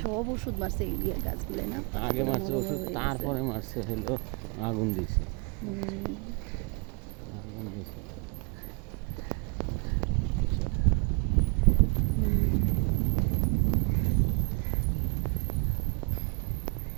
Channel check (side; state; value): left; quieter; 33.9 dB